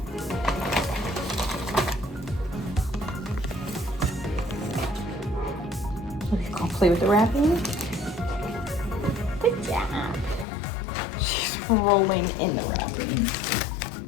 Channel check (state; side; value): drops out; right; at 10.5 s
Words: I'll play with the wrapping. Good job. She's rolling in the wrapping.